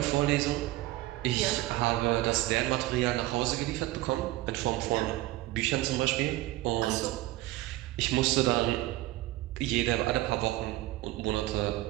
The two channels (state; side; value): quieter; left; 17.3 dB